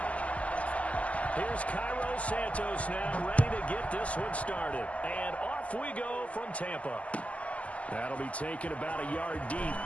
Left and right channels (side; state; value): right; late; 0.067 ms